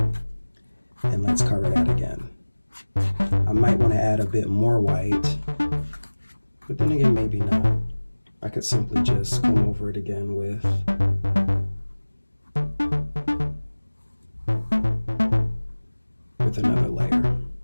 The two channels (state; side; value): inverted; both; correlation -1.00